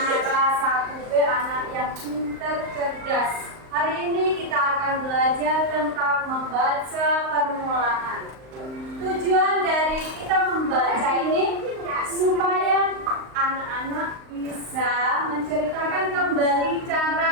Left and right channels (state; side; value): late; left; 38 ms